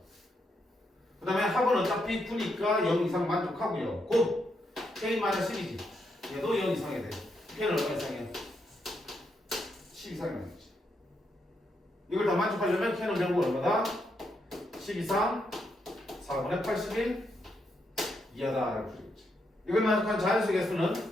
그 다음에 합은 어차피 9니까 0 이상 만족하고요. 곱 K-12지. 얘도 0 이상이 돼. K는 얼마 이상이야? 10 이상이 나겠지. 이걸 다 만족하려면 K는 결국 얼마다? 10 이상 4분의 81 이하다 라고 풀겠지. 이걸 만족한 자연수 개수는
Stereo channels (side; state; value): both; normal; correlation 0.79